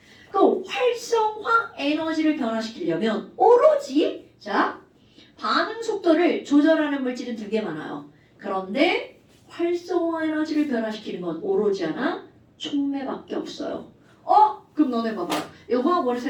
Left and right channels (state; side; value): identical; both; correlation 1.00